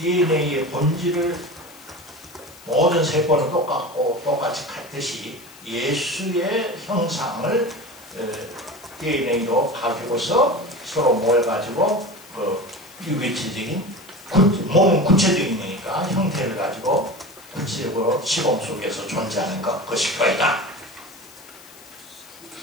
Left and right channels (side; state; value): left; noise; hiss, 21 dB below the sound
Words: 본질을 모든 세포는 똑같이 같듯이 예수의 형상을 DNA로 가지고서 서로 모여가지고 유기체적인 몸은 구체적인 거니까 형태를 가지고 구체적으로 시공 속에서 존재하는 것이 교회다.